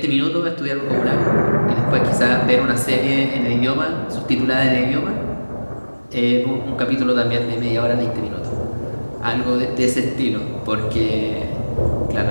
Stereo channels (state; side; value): inverted; both; correlation -1.00